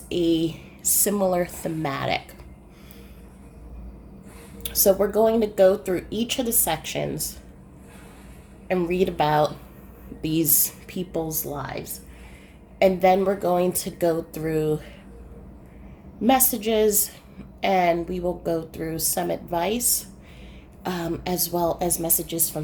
a similar thematic. So we're going to go through each of the sections and read about these people's lives. And then we're going to go through messages and we will go through some advice as well as messages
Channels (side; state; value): both; identical; correlation 1.00